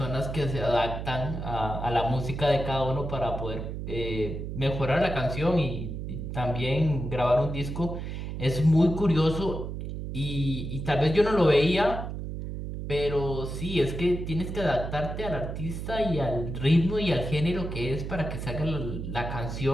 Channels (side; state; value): right; noise; hum, 6 dB below the sound